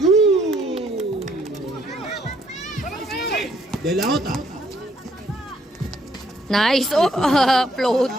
Good. De La Jota. Nice. Oh,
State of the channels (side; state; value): both; normal; correlation 0.68